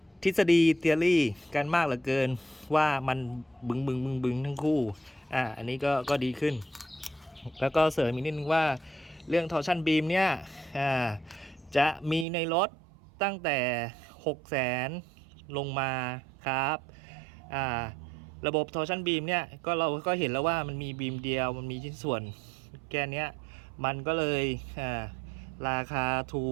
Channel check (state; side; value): drops out; left; at 12.2 s